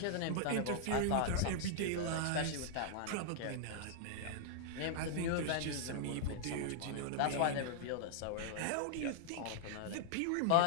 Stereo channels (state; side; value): different; both; correlation -0.01